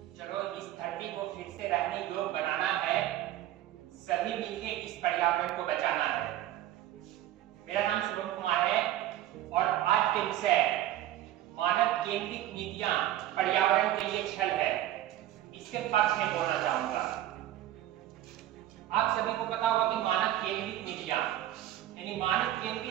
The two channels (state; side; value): quieter; left; 13.5 dB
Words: इस धरती को फिर से रहने योग्य बनाना है, सभी मिलकर इस पर्यावरण को बचाना है। मेरा नाम शुभम कुमार है और आज के विषय मानव केंद्रित नीतियां पर्यावरण के लिए छल है, इसके पक्ष में बोलना चाहूंगा। आप सभी को पता होगा कि मानव केंद्रित नीतियां यानी मानव